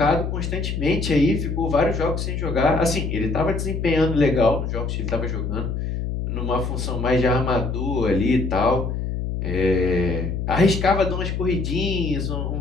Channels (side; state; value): left; noise; hum, 3 dB below the sound